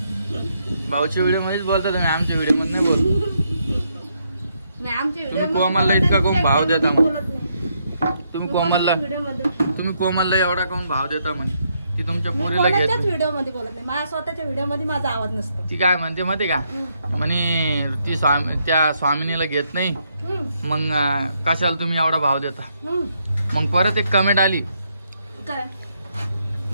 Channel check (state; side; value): inverted; both; correlation -0.76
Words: भाऊच्या व्हिडिओ मध्येच बोलता तुम्ही. आमच्या व्हिडिओ मध्ये नाही बोल. नाही आमच्या तुम्ही कोमलला इतका कोण भाव देता मग. तुम्ही कोमलला व्हिडिओ कोमलला एवढा कोण भाव देता म्हणे की तुमच्या पोरीला घेत नाही. व्हिडिओ मध्ये बोलत नाही. माझ्या स्वतःच्या व्हिडिओ मध्ये माझा आवाज नसतो. ती काय म्हणते माहिती का म्हणे ती त्या स्वामिनीला घेत नाही मग कशाला तुम्ही एवढा भाव देता. मग परत एक कमेंट आली काय